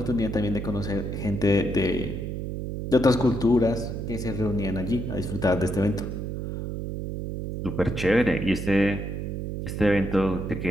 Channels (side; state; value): right; noise; hum, 5 dB below the sound